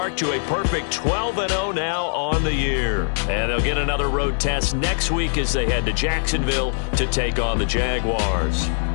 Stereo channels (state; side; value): silent; right; digital silence